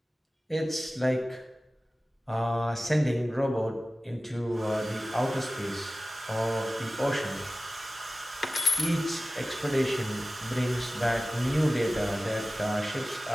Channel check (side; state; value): both; normal; correlation 0.96